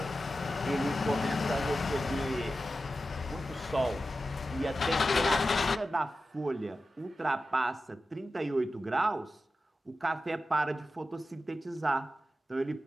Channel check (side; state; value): both; normal; correlation 0.92